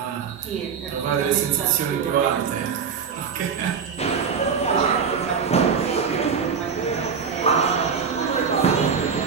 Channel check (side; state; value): left; quieter; 6.3 dB